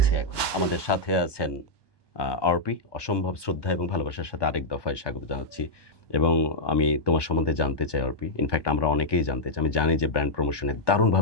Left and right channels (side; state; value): right; late; 1.2 ms